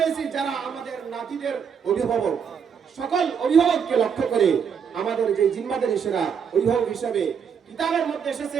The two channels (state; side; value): quieter; left; 7.0 dB